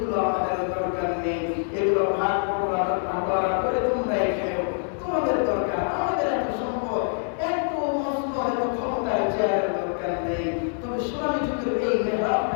আমাদের দরকার নেই, এগুলো ভাগ বটোয়ারা করে তোমরাই খেও, তোমাদের দরকার। আমাদের এত সম্পদ, এত মসনদ, এত ক্ষমতার চেয়ারের দরকার নেই। তবে সোনালী যুগের এই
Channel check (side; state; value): right; silent; digital silence